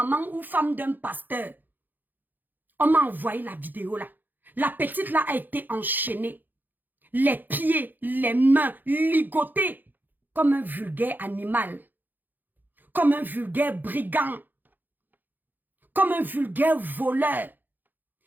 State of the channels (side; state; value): left; late; 0.087 ms